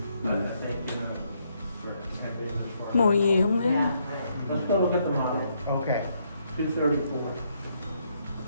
But I think, you know, for camping this far. mùi gì không biết. Yeah. Let's go look at the model, Okay. 234.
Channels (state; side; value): inverted; both; correlation -0.74